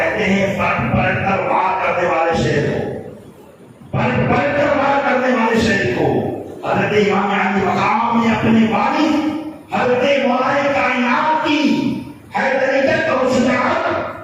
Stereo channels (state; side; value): identical; both; correlation 1.00